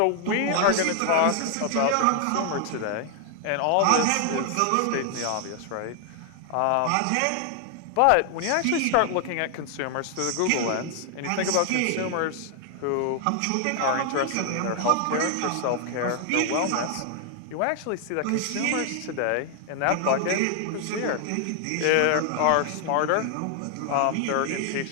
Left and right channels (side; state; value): both; different; correlation 0.00